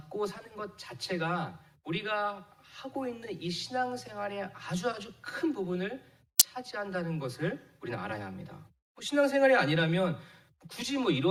사는 것 자체가 우리가 하고 있는 이 신앙생활의 아주 큰 부분을 차지한다는 것을 우리는 알아야 합니다. 신앙생활이 아니라면 굳이 뭐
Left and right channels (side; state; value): both; identical; correlation 1.00